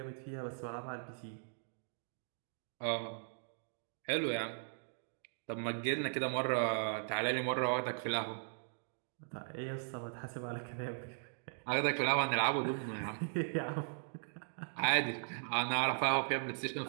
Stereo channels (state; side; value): silent; left; digital silence